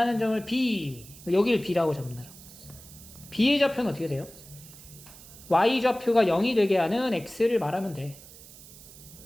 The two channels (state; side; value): noise; right; hiss, 19 dB below the sound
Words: 점을 B. 여기를 B라고 잡는다. B의 좌표는 어떻게 돼요? Y 좌표가 0이 되게 하는 X를 말하면 돼.